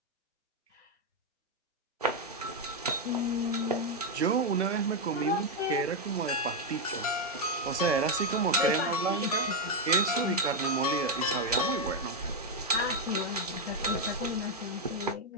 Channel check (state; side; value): normal; both; correlation 0.02